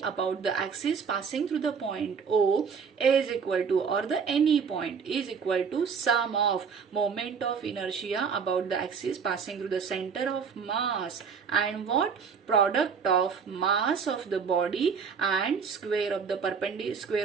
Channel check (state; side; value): quieter; left; 6.2 dB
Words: about the axis passing through the point O is equal to, or the any point is equal to, sum of moment of inertia about the axis passing through the center of mass and what? Product of mass of the body and square of the